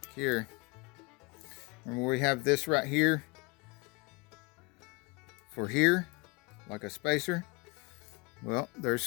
here. Remember we have this right here for here, like a spacer. Well,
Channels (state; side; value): quieter; right; 27.3 dB